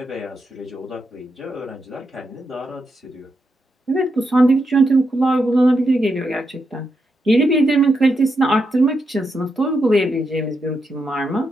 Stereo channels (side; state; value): both; normal; correlation 0.84